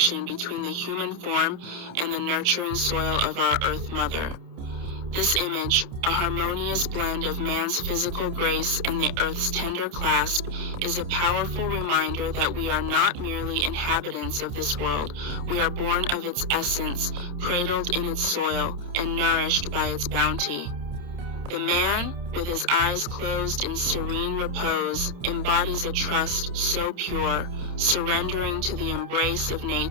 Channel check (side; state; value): left; late; 29 ms